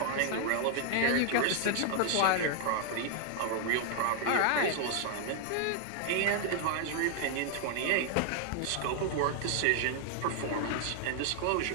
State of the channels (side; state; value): both; different; correlation 0.00